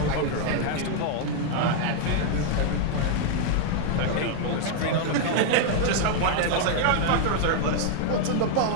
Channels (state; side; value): different; both; correlation 0.00